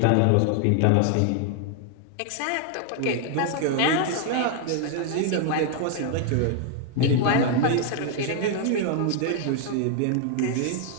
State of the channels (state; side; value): different; both; correlation 0.00